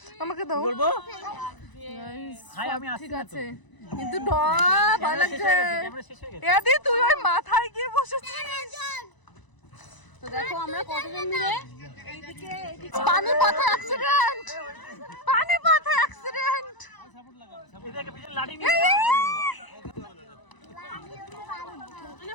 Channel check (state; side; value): late; right; 1.0 ms